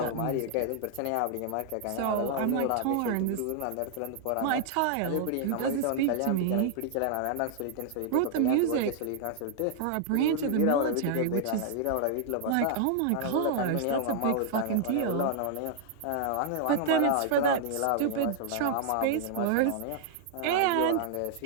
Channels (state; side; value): different; both; correlation -0.01